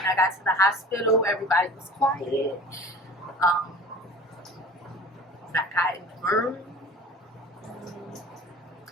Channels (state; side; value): normal; both; correlation 0.42